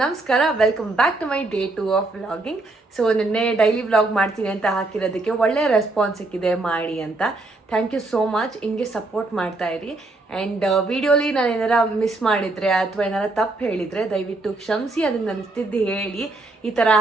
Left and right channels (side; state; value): left; quieter; 3.1 dB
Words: ನಮಸ್ಕಾರ. Welcome back to my day 2 of vlogging. So ನಿನ್ನೆ ಡೈಲಿ ವ್ಲಾಗ್ ಮಾಡ್ತೀನಿ ಅಂತ ಹಾಕಿರೋದಕ್ಕೆ ಒಳ್ಳೆ ರೆಸ್ಪಾನ್ಸ್ ಸಿಕ್ಕಿದೆ ಮಾಡಿ ಅಂತ. Thank you so much. ಹಿಂಗೆ ಸಪೋರ್ಟ್ ಮಾಡ್ತಾ ಇರಿ. ಆ್ಯಂಡ್ ವಿಡಿಯೋಲಿ ನಾನು ಏನಾರ ಮಿಸ್ ಮಾಡಿದರೆ ಅಥವಾ ಏನಾರ ತಪ್ಪು ಹೇಳಿದರೆ ದಯವಿಟ್ಟು ಕ್ಷಮಿಸಿ. ಅದನ್ನು ನನಗೆ ಹೇಳಿ ಈ ಥರ